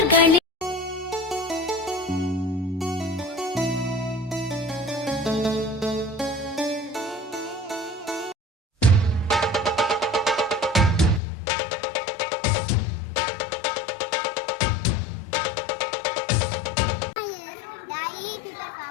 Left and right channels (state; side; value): drops out; right; at 11.2 s